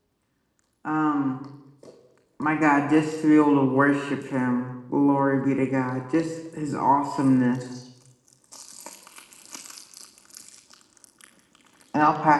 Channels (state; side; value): identical; both; correlation 1.00